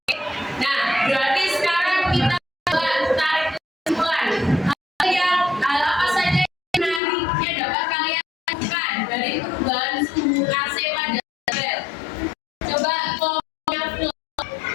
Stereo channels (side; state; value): right; drops out; at 7.0 s